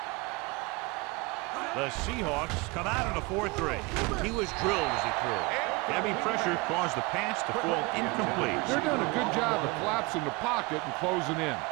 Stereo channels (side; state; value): left; quieter; 25.2 dB